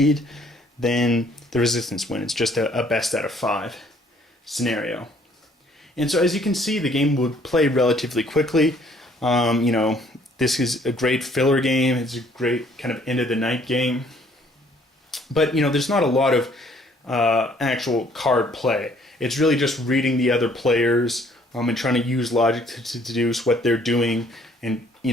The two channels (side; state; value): both; normal; correlation 0.61